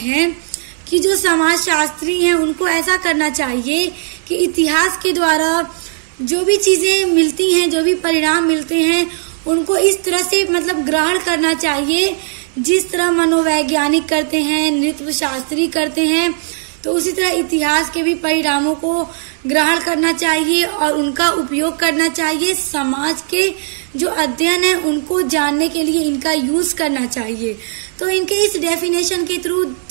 कि जो समाज शास्त्री हैं उनको ऐसा करना चाहिए कि इतिहास के द्वारा जो भी चीजें मिलती हैं, जो भी परिणाम मिलते हैं, उनको इस तरह से ग्रहण करना चाहिए जिस तरह मनोवैज्ञानिक करते हैं, नृत्य शास्त्री करते हैं, तो उसी तरह इतिहास के भी परिणामों को ग्रहण करना चाहिए और उनका उपयोग करना चाहिए। समाज के जो अध्ययन है उनको जानने के लिए इनका यूज करना चाहिए। तो इनके इस डेफिनेशन के थ्रू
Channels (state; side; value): silent; left; 67 dB below the other